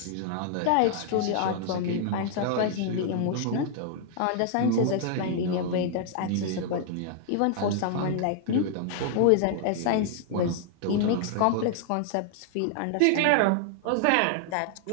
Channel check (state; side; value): different; both; correlation 0.00